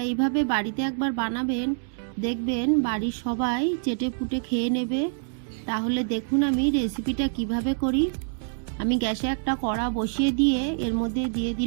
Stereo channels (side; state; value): left; silent; 61 dB below the other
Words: এইভাবে বাড়িতে একবার বানাবেন, দেখবেন বাড়ির সবাই চেটে পুটে খেয়ে নেবে। তাহলে দেখুন আমি রেসিপিটা কিভাবে করি। আমি গ্যাসে একটা কড়া বসিয়ে দিয়ে এর মধ্যে দিয়ে